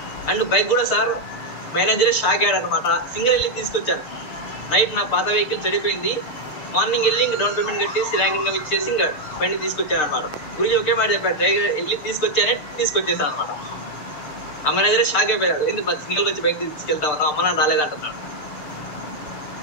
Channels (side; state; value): right; late; 6.7 ms